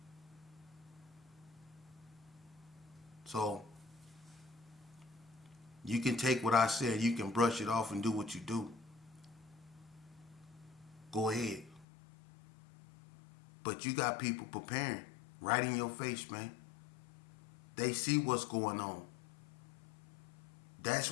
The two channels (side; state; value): right; drops out; at 11.9 s